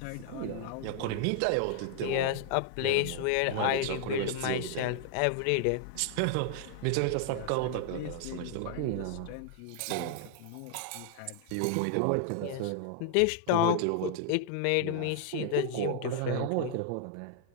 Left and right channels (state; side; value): different; both; correlation 0.00